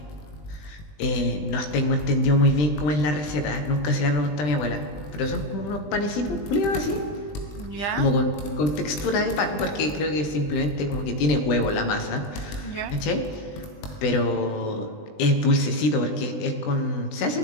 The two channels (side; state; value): right; late; 20 ms